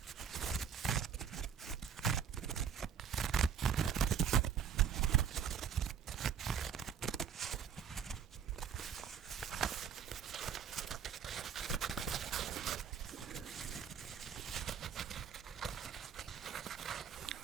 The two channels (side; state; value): left; quieter; 7.6 dB